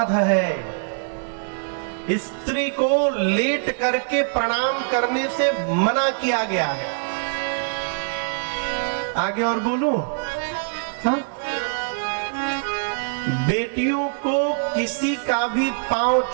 है। स्त्री को लेट करके प्रणाम करने से मना किया गया है। आगे और बोलूं? हाँ? बेटियों को किसी का भी पांव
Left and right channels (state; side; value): silent; left; digital silence